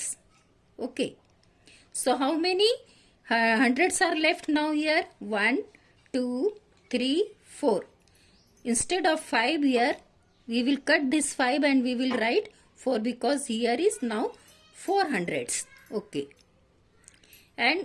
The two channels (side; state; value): both; identical; correlation 1.00